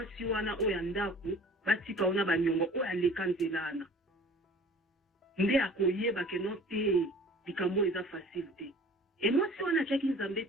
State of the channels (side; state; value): both; normal; correlation 0.47